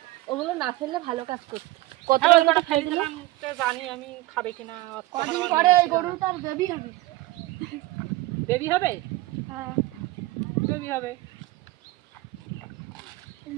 ওগুলো না ফেললে ভালো কাজ করতে। হ্যাঁ, ওই কটা কতটা ফেলে দিলাম তো জানি আমি খাবে কিনা। কদিন পরে এই গরুটার বেবি হবে বেবি হবে হ্যাঁ বেবি হবে।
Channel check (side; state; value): left; quieter; 18.5 dB